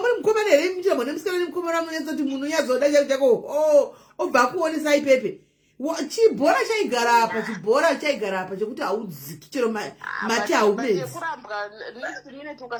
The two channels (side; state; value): both; identical; correlation 1.00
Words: mukomana here muchirambwa nemusikana nemukomana munetsa kuti munhu unyazoda chako obva kuonesa ipepe. Chibhora chaigara apa chekuti haudziki chero mate haumedzi. Yekurambwa next minute